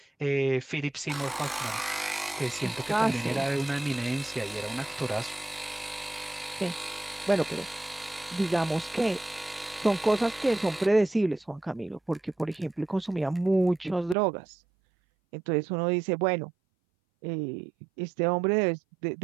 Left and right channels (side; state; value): left; drops out; at 14.2 s